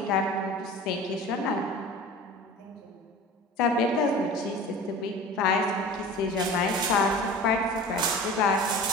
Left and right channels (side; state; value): both; normal; correlation 0.38